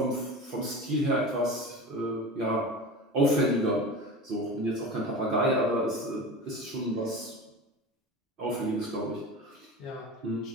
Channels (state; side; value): normal; both; correlation 0.31